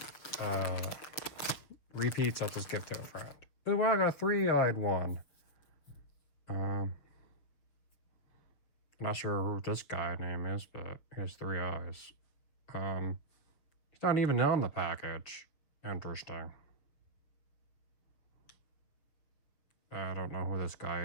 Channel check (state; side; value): late; right; 6.9 ms